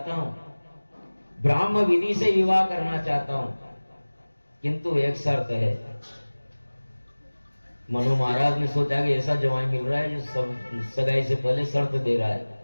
हूं, ब्राह्म विधि से विवाह करना चाहता हूं, किंतु एक शर्त है। मनु महाराज ने सोचा कि ऐसा जवाई मिल रहा है जो सगाई से पहले शर्त दे रहा है।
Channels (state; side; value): inverted; both; correlation -1.00